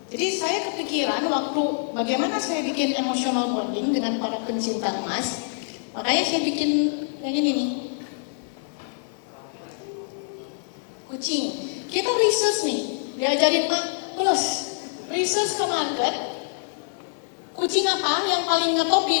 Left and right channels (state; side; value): silent; right; digital silence